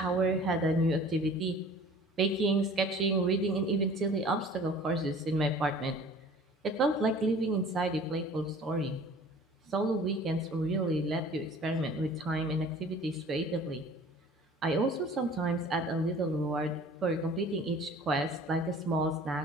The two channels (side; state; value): both; normal; correlation 0.47